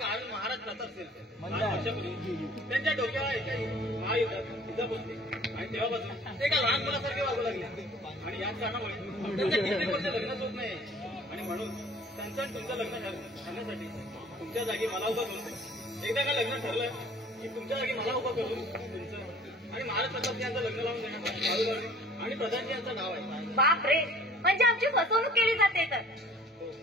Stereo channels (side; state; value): both; normal; correlation 0.51